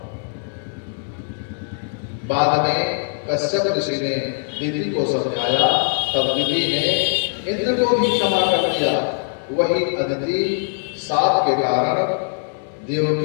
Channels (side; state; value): right; silent; digital silence